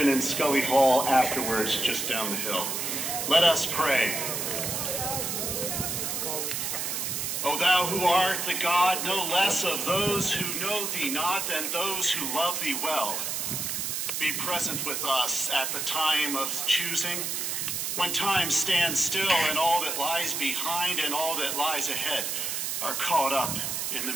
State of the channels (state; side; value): noise; right; hiss, 2 dB below the sound